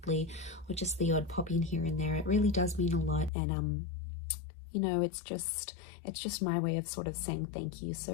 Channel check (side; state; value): right; drops out; at 3.3 s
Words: or just the odd pop in here and there. It really does mean a lot. And you know, it's just my way of sort of saying thank you.